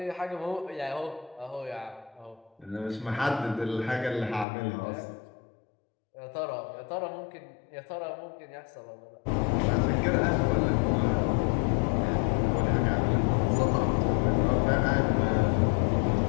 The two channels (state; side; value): drops out; right; at 4.5 s